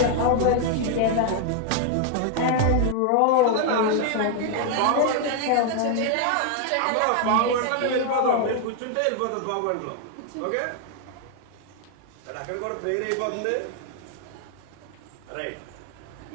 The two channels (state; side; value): different; both; correlation 0.00